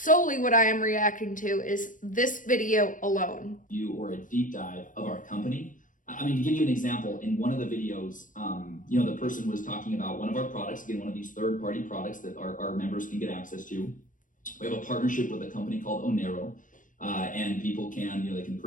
what I am reacting to, is this video alone. Or a deep dive of our company. I mean, to give you an example, in one of the videos, you know, the person was talking about one of our products, again, one of these third-party products that our members can get access to. We have a partnership with a company called Onero, and people can, you know, they can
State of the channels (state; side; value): late; right; 0.38 ms